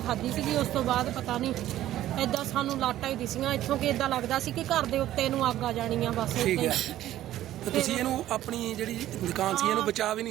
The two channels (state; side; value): quieter; left; 13.5 dB